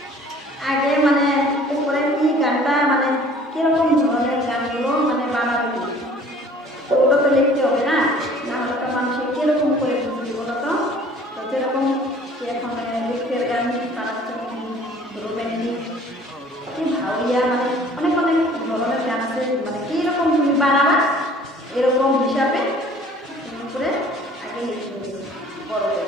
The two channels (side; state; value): both; normal; correlation 0.51